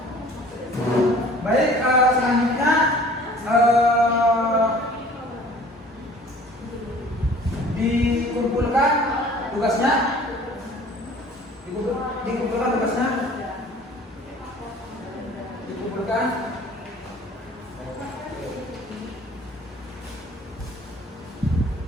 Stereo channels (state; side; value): normal; both; correlation 0.49